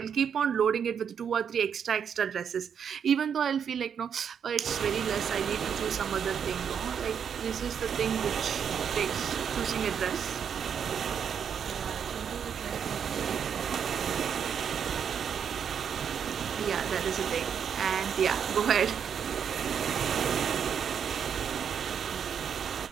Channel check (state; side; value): quieter; left; 7.6 dB